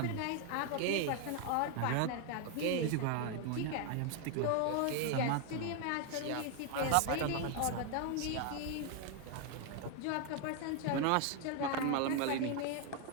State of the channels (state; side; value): different; both; correlation 0.01